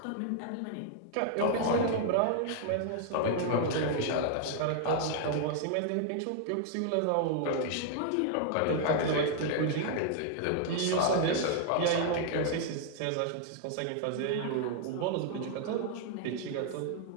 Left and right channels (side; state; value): both; different; correlation 0.00